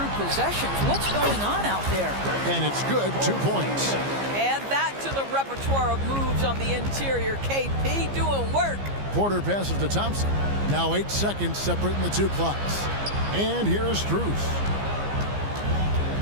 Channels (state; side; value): late; left; 15 ms